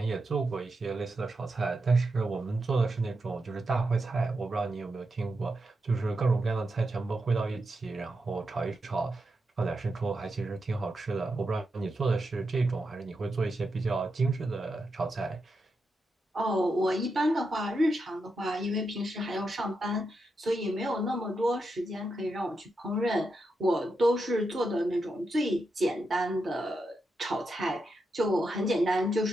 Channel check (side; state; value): both; normal; correlation 0.86